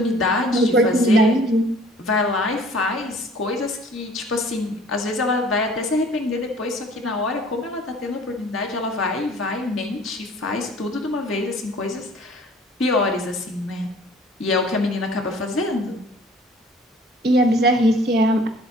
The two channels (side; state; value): both; normal; correlation 0.51